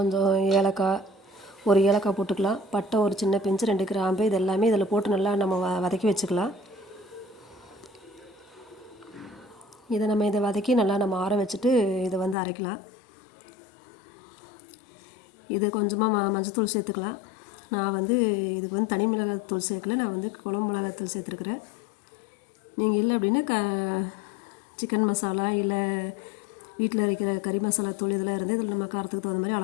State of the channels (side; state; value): right; drops out; at 12.4 s